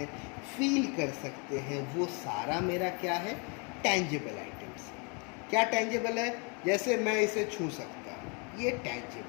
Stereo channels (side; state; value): right; quieter; 34.0 dB